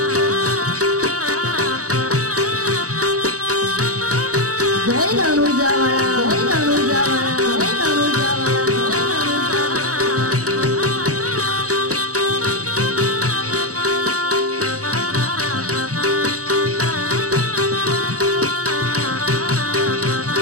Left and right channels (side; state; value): left; late; 0.66 ms